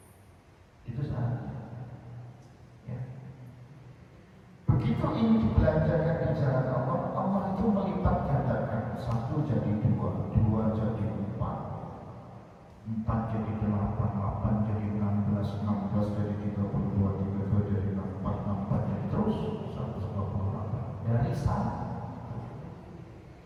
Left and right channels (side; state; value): both; identical; correlation 1.00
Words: Itu syaratnya. Ya. Begitu ini dibelanjakan di jalan Allah, Allah itu melipat gandakan. Satu jadi dua, dua jadi empat, empat jadi delapan, delapan jadi 16, 16 jadi 32, 32 jadi 64, 64 jadi terus 128 dari sana.